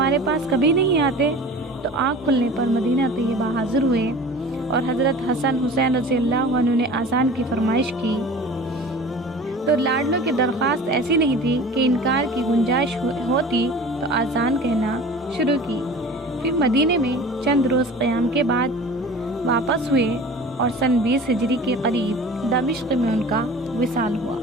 پاس کبھی نہیں آتے؟ تو آنکھ کھلنے پر مدینہ طیبہ حاضر ہوئے اور حضرت حسن حسین رضی اللہ عنہ نے آذان کی فرمائش کی تو لاڈلوں کی درخواست ایسی نہیں تھی کہ انکار کی گنجائش ہوتی تو آذان کہنا شروع کی۔ پھر مدینے میں چند روز قیام کے بعد واپس ہوئے اور سن 20 ہجری کے قریب دمشق میں ان کا وصال ہوا۔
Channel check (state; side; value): normal; both; correlation 0.40